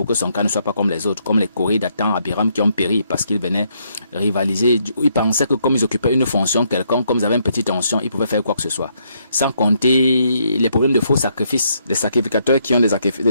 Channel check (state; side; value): inverted; both; correlation -0.73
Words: que son cas ne soit pas comme les autres, comme les Corées d'Athan, Abiram qui ont péri parce qu'ils venaient rivaliser. Ils pensaient que comme ils occupaient une fonction quelconque, comme ils avaient une petite tension, ils pouvaient faire quoi que ce soit. Sans compter les problèmes de faux sacrifices, les sacrificateurs qui ont des